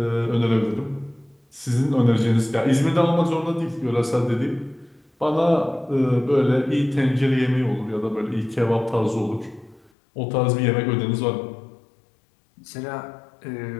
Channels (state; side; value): drops out; right; at 9.9 s